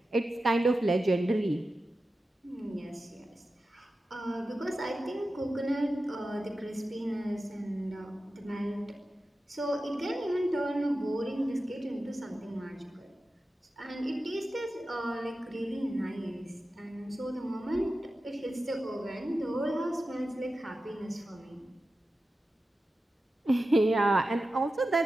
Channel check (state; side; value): normal; both; correlation 0.93